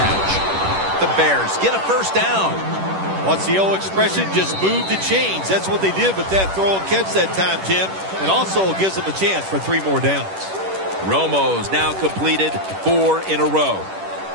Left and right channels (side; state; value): left; late; 10 ms